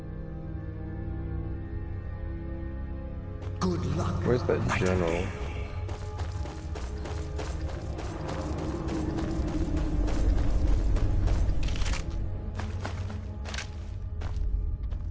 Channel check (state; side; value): identical; both; correlation 1.00